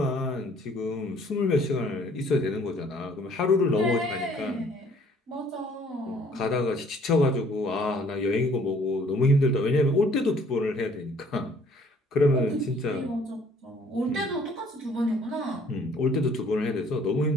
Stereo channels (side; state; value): both; normal; correlation 0.58